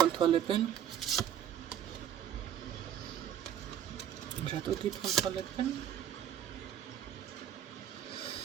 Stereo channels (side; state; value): left; quieter; 9.7 dB